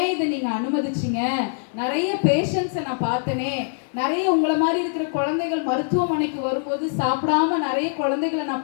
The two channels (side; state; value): right; silent; digital silence